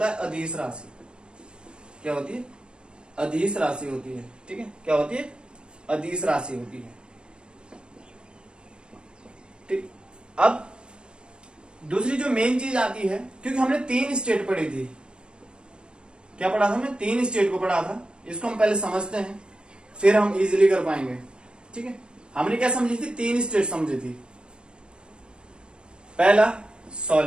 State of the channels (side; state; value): left; late; 0.053 ms